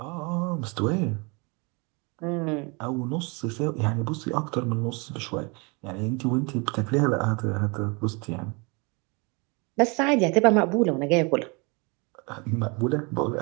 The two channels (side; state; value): left; quieter; 30.2 dB